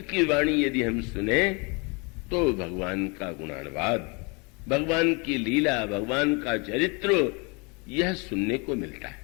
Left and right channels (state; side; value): quieter; right; 30.6 dB